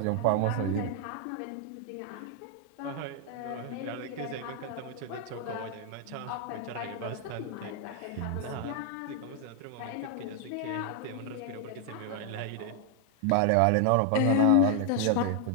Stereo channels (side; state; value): both; different; correlation 0.00